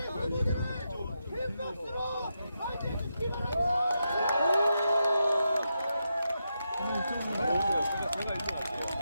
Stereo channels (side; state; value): both; inverted; correlation -0.85